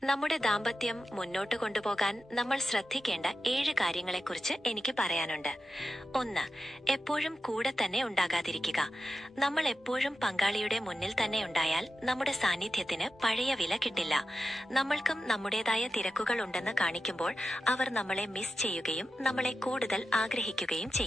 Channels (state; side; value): normal; both; correlation 0.91